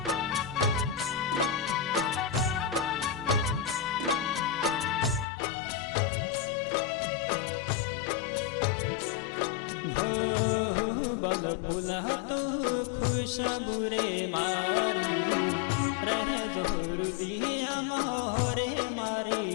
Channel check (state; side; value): drops out; right; at 5.2 s